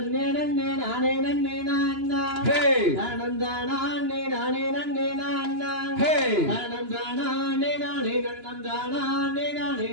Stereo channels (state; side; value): late; left; 2.9 ms